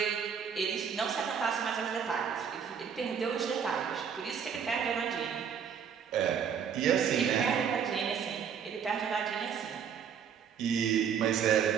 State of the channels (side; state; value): left; quieter; 7.4 dB